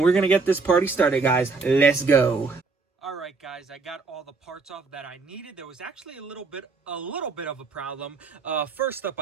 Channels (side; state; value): left; quieter; 4.3 dB